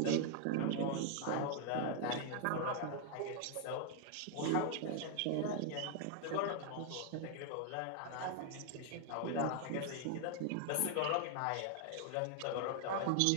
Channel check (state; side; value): different; both; correlation 0.00